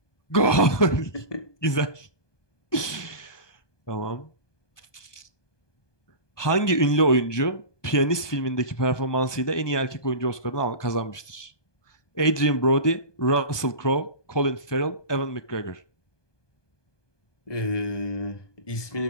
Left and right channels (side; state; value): right; late; 1.2 ms